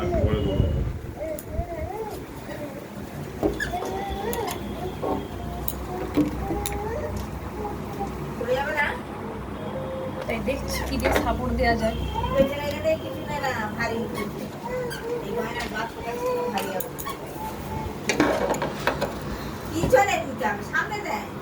তাই দেখছি কি দিয়ে সাপোর্ট দেওয়া যায়।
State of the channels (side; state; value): both; identical; correlation 1.00